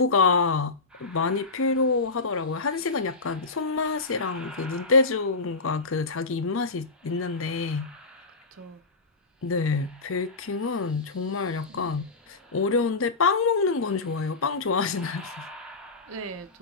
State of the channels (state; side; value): quieter; right; 3.8 dB